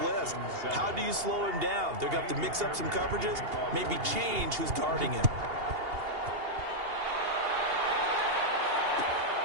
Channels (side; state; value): left; late; 2.8 ms